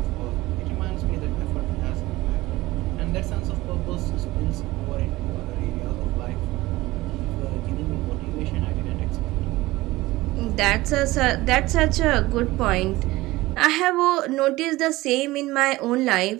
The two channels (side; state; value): left; quieter; 18.8 dB